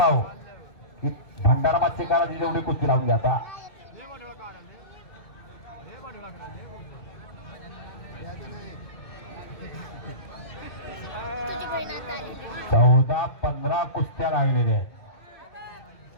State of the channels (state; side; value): late; right; 2.6 ms